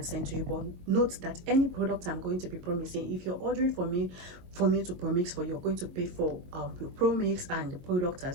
send to you. But note that any product I'm going to be promixing, if you're ordering for me to promix for you, you're going to pay for your promix and the product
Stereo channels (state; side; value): late; left; 22 ms